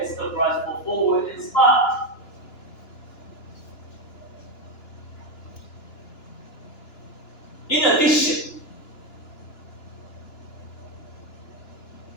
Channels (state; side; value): late; right; 2.9 ms